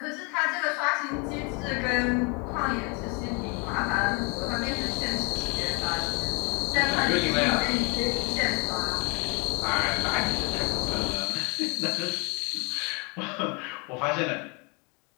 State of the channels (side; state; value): right; quieter; 30.5 dB